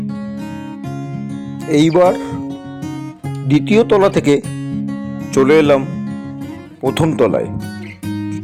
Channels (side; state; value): both; identical; correlation 1.00